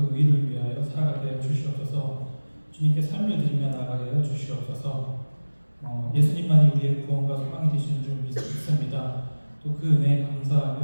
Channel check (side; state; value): both; inverted; correlation -1.00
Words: 의를 위하여 살아가게 하여 주시옵소서. 주님께 삶을 드리며 나아가게 하여 주시옵소서. 예수님만이 우리의 구원과 소망이 되시는 줄 믿습니다. 또 그 은혜에